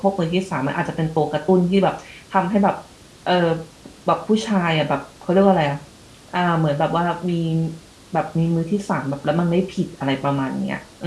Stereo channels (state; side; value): identical; both; correlation 1.00